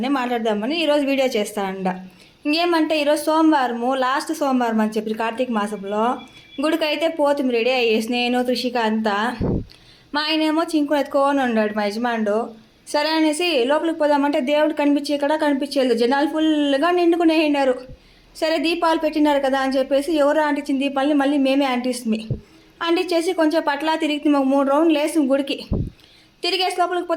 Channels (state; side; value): identical; both; correlation 1.00